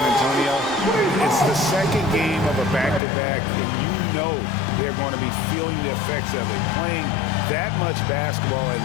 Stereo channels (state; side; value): drops out; right; at 3.0 s